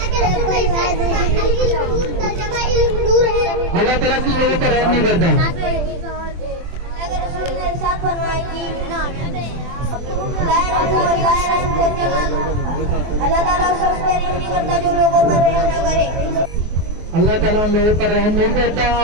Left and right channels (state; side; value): late; left; 24 ms